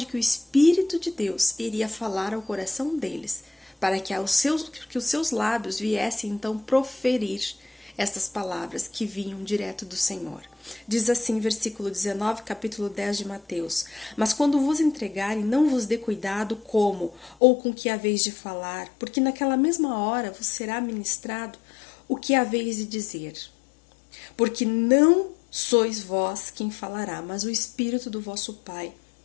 que o Espírito de Deus iria falar ao coração deles, para que os seus lábios viessem então proferir estas palavras que vinham direto do Senhor. Diz assim, versículo 19, capítulo 10 de Mateus: mas quando vos entregarem, não vos dê cuidado como ou com que haveis de falar, porque naquela mesma hora vos será ministrado o que haveis de dizer. Porque não sois vós quem falará, mas o Espírito do vosso Pai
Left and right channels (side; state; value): right; drops out; at 17.4 s